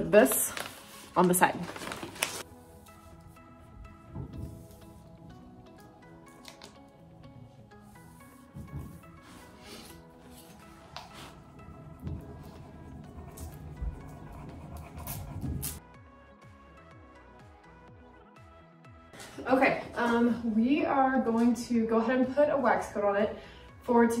this on the side. Okay, we are going to go ahead and put a wax coat on it. For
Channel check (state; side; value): identical; both; correlation 1.00